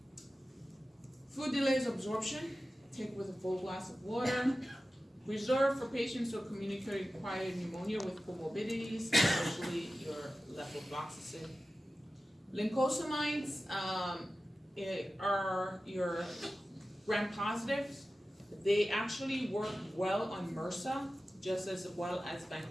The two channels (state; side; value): normal; both; correlation 0.95